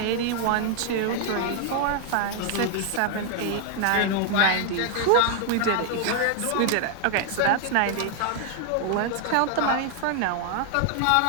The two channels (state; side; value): different; both; correlation 0.00